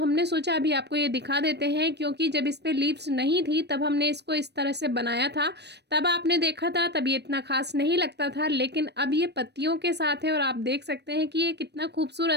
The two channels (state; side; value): late; left; 0.49 ms